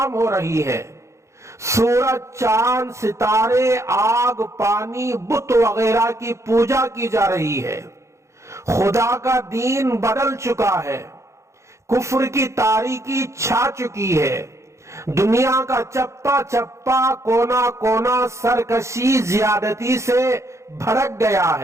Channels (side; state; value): left; late; 0.14 ms